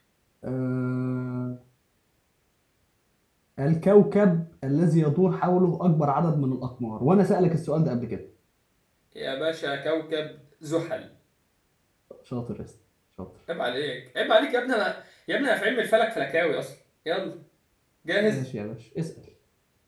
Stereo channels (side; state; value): both; identical; correlation 1.00